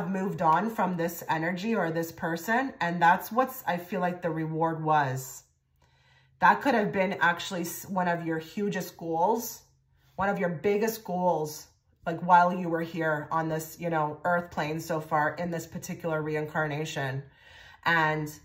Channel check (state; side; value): identical; both; correlation 1.00